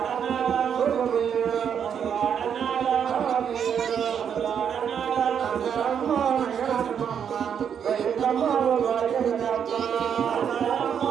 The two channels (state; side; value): quieter; left; 7.9 dB